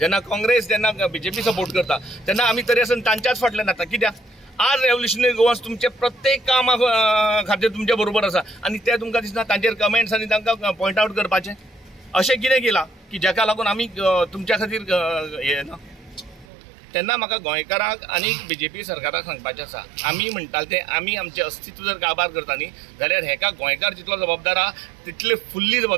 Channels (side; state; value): left; drops out; at 16.4 s